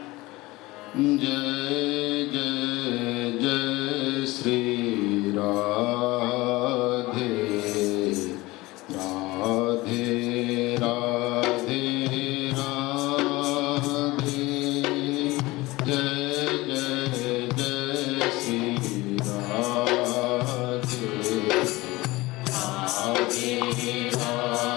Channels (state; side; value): quieter; right; 20.6 dB